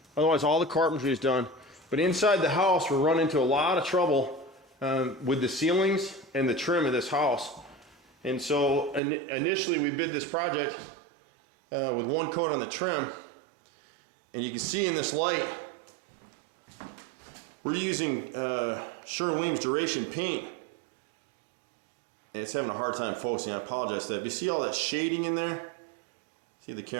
Otherwise, all the carpentry is done. But inside the house, we're running into a lot of trouble with the ceilings and the trim of this house. And so initially we bid this project with one coat on the trim, and you can see in this light we're using Sherwin-Williams Duration paint, and it's having a hard time focusing. I apologize for that. But you see all that shading in there? See the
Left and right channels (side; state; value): left; drops out; at 9.0 s